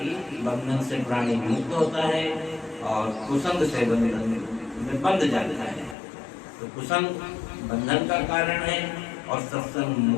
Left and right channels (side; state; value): right; drops out; at 6.0 s